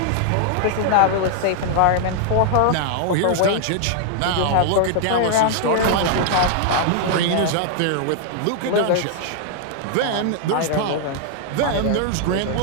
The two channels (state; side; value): different; both; correlation -0.01